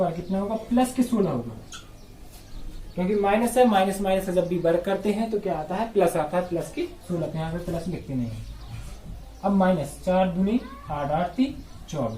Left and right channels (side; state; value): both; identical; correlation 1.00